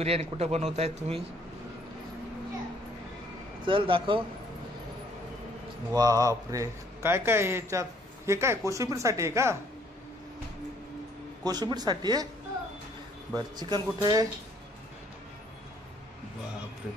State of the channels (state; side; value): normal; both; correlation 0.63